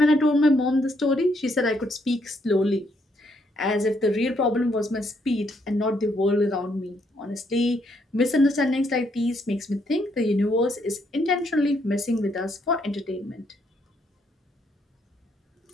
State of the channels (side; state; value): both; normal; correlation 0.73